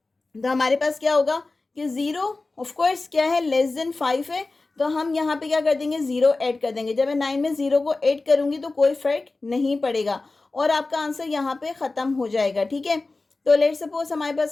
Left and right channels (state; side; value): quieter; right; 3.4 dB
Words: तो हमारे पास क्या होगा कि 0 ऑफकोर्स क्या है, लेस देन 5 है, तो हम यहाँ पे क्या कर देंगे, 0 ऐड कर देंगे. जब मैं 9 में 0 को ऐड करूँगी तो कोई फर्क नहीं पड़ेगा और आपका आंसर यहाँ पे ख़त्म हो जाएगा. ठीक है, तो लेट सपोज हमारे